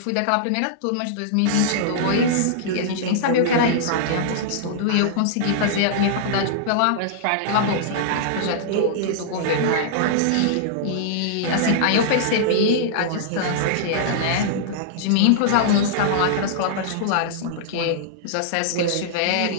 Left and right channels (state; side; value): different; both; correlation -0.02